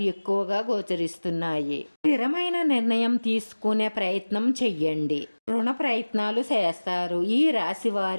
ఎక్కువగా గోచరిస్తున్నాయి. స్థిరమైన నిర్ణయం తీసుకునే ప్రయత్నం చెయ్యండి. రుణ ప్రయత్నాలు చేస్తారు. ఈ రాశి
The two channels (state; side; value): inverted; both; correlation -1.00